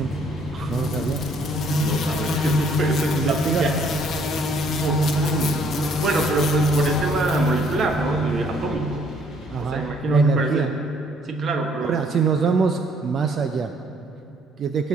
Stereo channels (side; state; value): both; normal; correlation 0.64